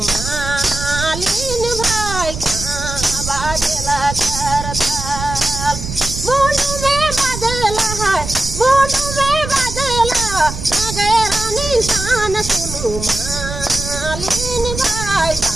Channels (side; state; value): right; noise; rumble, 7 dB below the sound